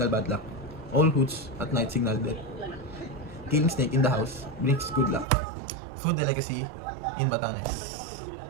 bad luck. All hoots at night signal death. Killing snake in the house brings good luck. Food delicacy in Batanes.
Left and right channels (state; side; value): drops out; left; at 5.2 s